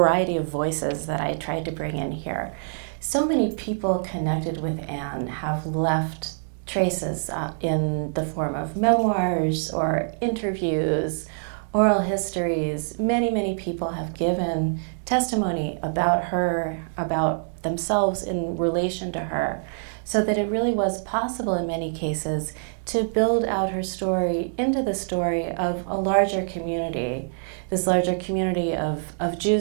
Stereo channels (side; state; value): left; silent; digital silence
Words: of voices that I tried to bring in here. So many people connected with Anne have left traces in the form of memoirs or interviews, oral histories. Many, many people have given testimony about her, about themselves in relation to her, so that it really was possible in many cases to build out her story into the story of a larger community, this larger community of